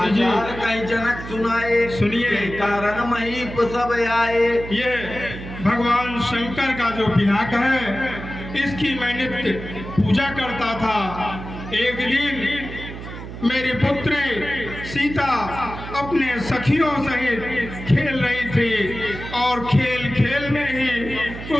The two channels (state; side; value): noise; right; hum, 10 dB below the sound